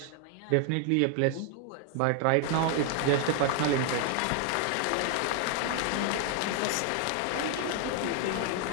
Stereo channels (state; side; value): different; both; correlation 0.00